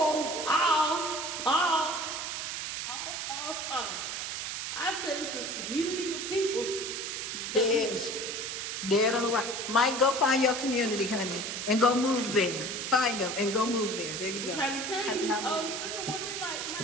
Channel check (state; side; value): noise; right; hiss, 4 dB below the sound